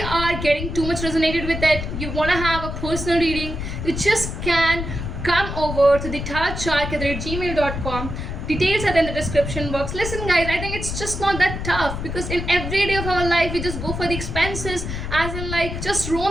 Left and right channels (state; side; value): noise; left; rumble, 5 dB below the sound